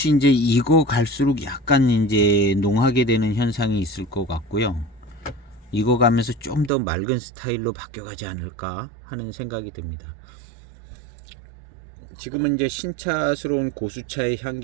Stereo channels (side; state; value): left; drops out; at 6.7 s